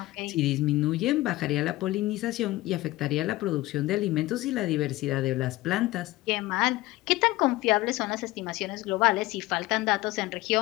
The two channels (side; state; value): right; quieter; 18.3 dB